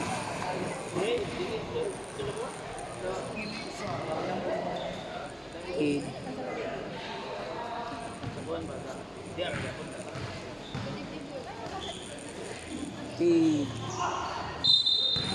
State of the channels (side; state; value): both; identical; correlation 1.00